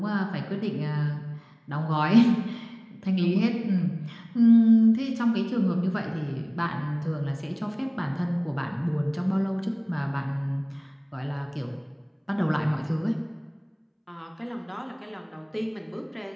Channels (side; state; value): both; identical; correlation 1.00